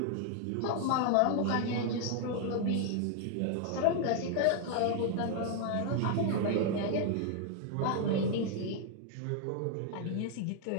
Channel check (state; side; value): different; both; correlation 0.00